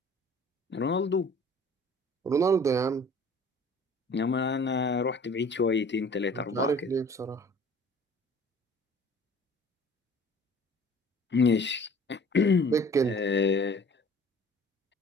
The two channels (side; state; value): both; normal; correlation 0.49